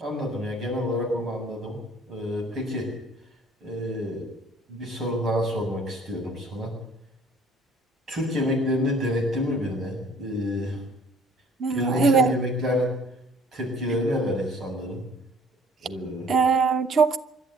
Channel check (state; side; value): normal; both; correlation 0.55